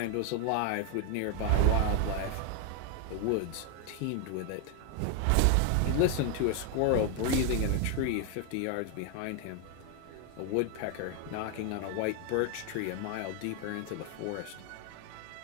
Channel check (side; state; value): both; different; correlation 0.00